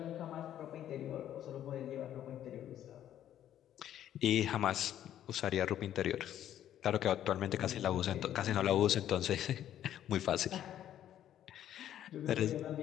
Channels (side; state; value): right; quieter; 11.3 dB